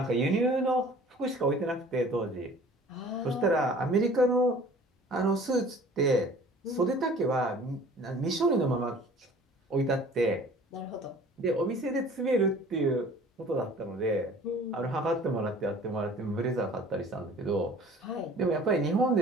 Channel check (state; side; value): normal; both; correlation 0.48